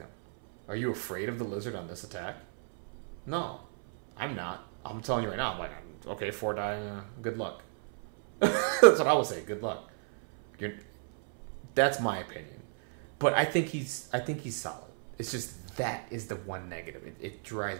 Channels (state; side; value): silent; left; 56 dB below the other